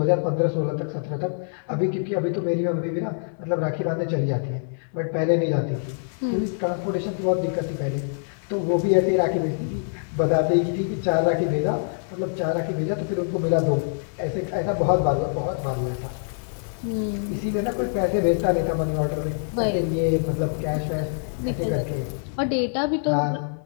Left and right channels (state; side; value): silent; right; digital silence